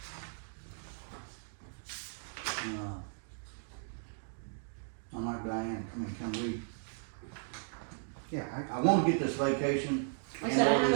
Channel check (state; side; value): silent; left; digital silence